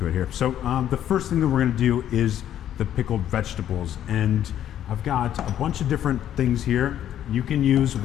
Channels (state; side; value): quieter; right; 10.9 dB